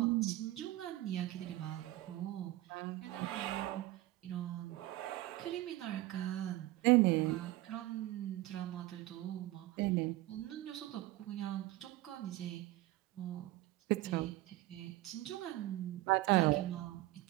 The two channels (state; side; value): quieter; left; 17.2 dB